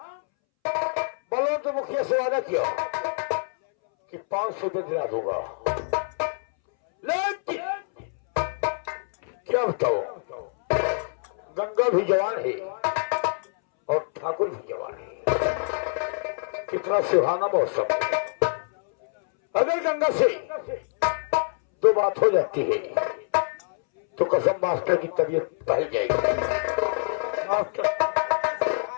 बलवंत मुखिया से वादा किया कि 500 रुपये दिला दूंगा, लेकिन क्या बताओ, गंगा भी जवान है और ठाकुर भी जवान है। कितना सुहाना मौसम। अगर गंगा से दो बात हो जाती है तो कसम मास्टर की तबीयत बदल जाएगी। मास्टर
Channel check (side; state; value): right; silent; 61 dB below the other